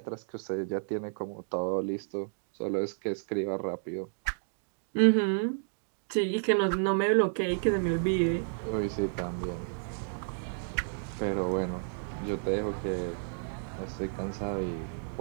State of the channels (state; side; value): silent; left; digital silence